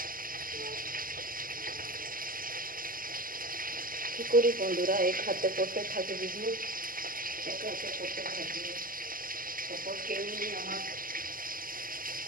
কী করি বন্ধুরা, এক হাতে করতে থাকি ভিডিও, এক হাতে করতে থাকি, সাপোর্ট কেউ নেই আমার,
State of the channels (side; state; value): left; late; 0.41 ms